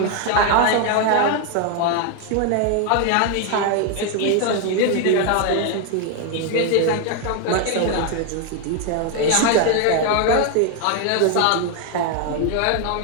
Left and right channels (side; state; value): both; different; correlation 0.01